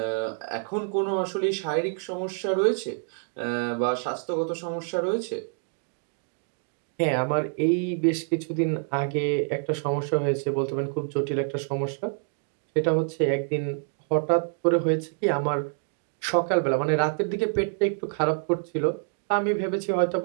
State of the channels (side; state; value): left; silent; 60 dB below the other